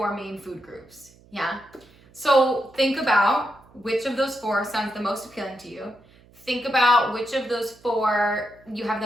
main food groups. Yeah. So think about which of those 4 sounds the most appealing to you. Think about which of those 4 you have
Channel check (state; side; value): noise; right; hum, 27 dB below the sound